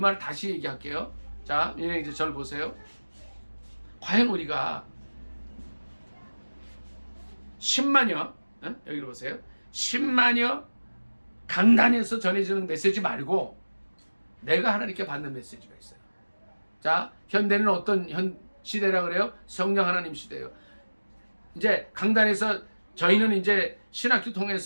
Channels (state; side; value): inverted; both; correlation -1.00